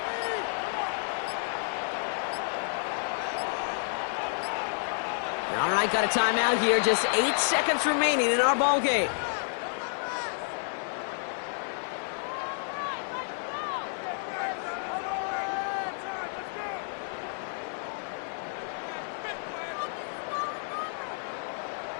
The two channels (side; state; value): right; silent; 58 dB below the other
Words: might got a timeout here. Just 8 seconds remaining in our ball game.